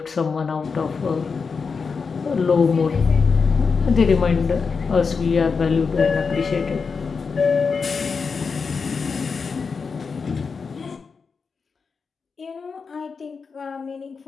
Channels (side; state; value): right; quieter; 5.2 dB